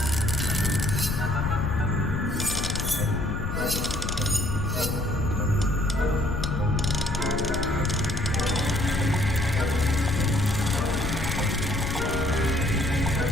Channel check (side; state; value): left; noise; rumble, 3 dB below the sound